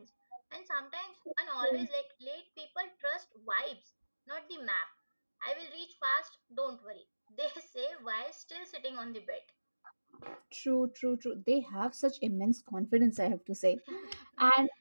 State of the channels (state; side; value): inverted; both; correlation -1.00